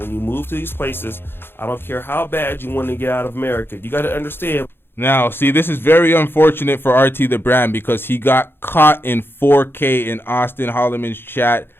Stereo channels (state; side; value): late; right; 0.10 ms